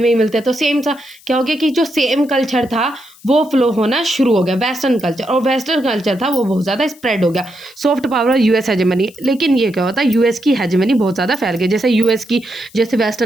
ही मिलते हैं। तो सेम सा क्या हो गया कि जो सेम कल्चर था वो फ्लो होना शुरू हो गया, वेस्टर्न कल्चर, और वेस्टर्न कल्चर था वो बहुत ज़्यादा स्प्रेड हो गया। सॉफ्ट पावर और यूएस हेजेमनी, लेकिन ये क्या होता है, यूएस की हेजेमनी बहुत ज़्यादा फैल गई, जैसे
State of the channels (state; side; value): noise; left; hiss, 25 dB below the sound